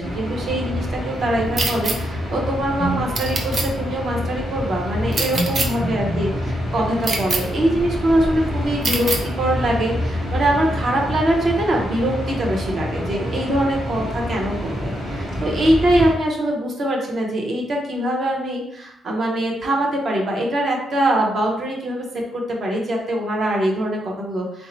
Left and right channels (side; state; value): both; normal; correlation 0.81